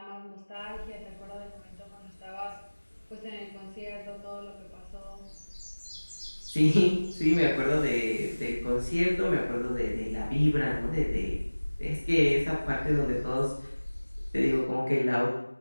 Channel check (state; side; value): inverted; both; correlation -1.00